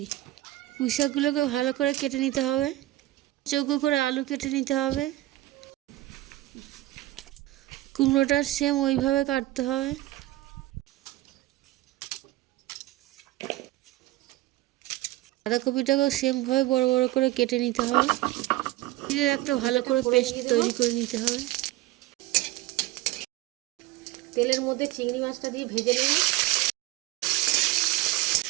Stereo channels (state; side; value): quieter; left; 17.4 dB